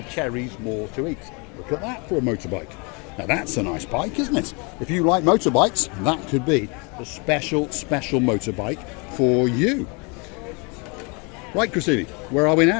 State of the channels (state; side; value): quieter; right; 31.6 dB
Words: cherries more to eat. Look at that for a motorbike. Now that's a nice bike, isn't it? If you like motorbikes, that could be the special motorbike for you. Right, Gracivia, where are we